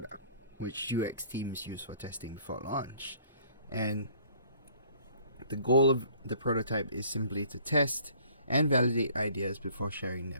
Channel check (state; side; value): inverted; both; correlation -0.57